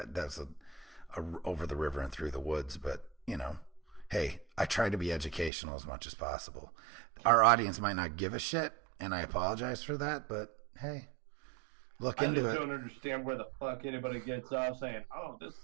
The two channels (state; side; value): drops out; left; at 5.5 s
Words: a over the river and through the woods, but hey, I try to be educational as much as possible. Our audience might not give a shit, and I apologize for that, but hey, look. I just don't understand where the fuck anybody gets off saying, "Oh, this